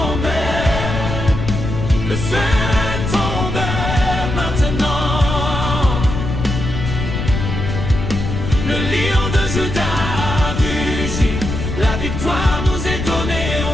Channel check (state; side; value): noise; left; rumble, 4 dB below the sound